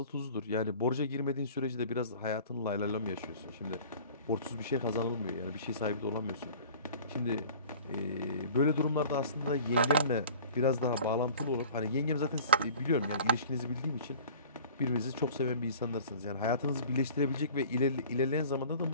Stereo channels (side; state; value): both; inverted; correlation -0.45